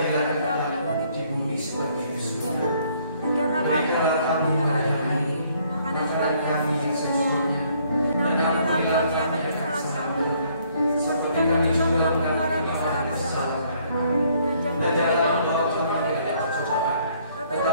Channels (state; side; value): inverted; both; correlation -0.65